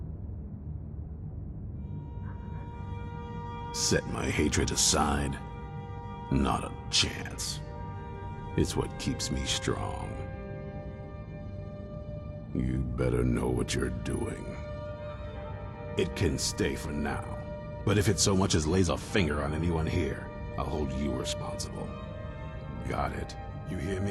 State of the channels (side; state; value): both; identical; correlation 1.00